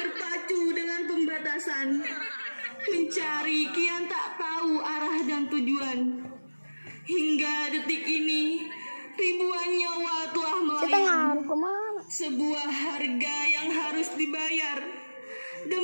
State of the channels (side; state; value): both; inverted; correlation -1.00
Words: dengan pembatasan. Mencari kian tak tahu arah dan tujuan. Hingga detik ini, ribuan nyawa telah melayang. Sebuah harga yang harus dibayar